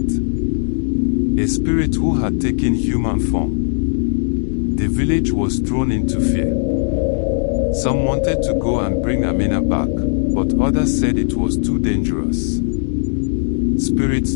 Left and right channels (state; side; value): silent; right; digital silence